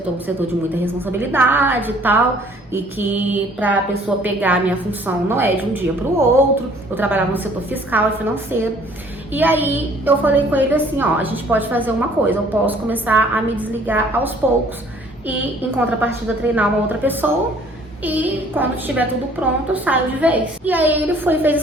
é um setor de muita responsabilidade e tal, e que pra pessoa pegar a minha função não é de um dia pro outro. Eu trabalhava no setor fiscal e financeiro. E aí eu falei com ele assim, ó, a gente pode fazer uma coisa, eu posso começar a me desligar aos poucos e em contrapartida treinar uma outra pessoa e quando estiver tudo pronto eu saio de vez. E aí ele fez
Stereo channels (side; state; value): both; normal; correlation 0.56